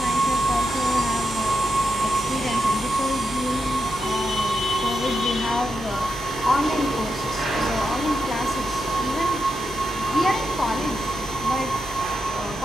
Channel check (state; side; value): normal; both; correlation 0.86